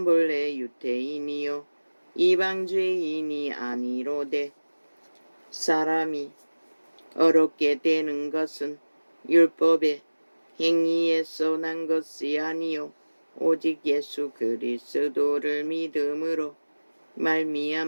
본래 유대인이요 이방죄인이 아니로되 사람이 어렵게 되는 것은 율법의 행위에서 난 것이 아니요 오직 예수 그리스도를 믿음으로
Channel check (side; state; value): both; inverted; correlation -1.00